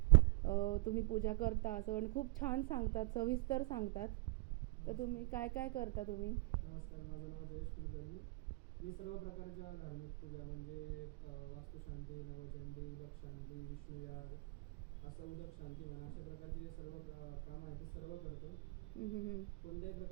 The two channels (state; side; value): quieter; left; 24.7 dB